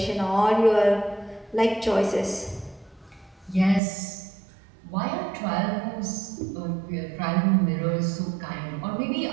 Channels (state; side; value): drops out; left; at 3.8 s